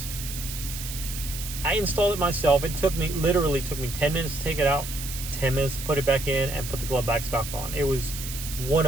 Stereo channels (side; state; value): right; noise; hiss, 8 dB below the sound